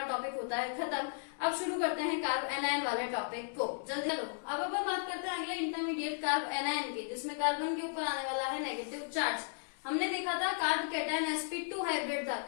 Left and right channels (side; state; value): right; silent; digital silence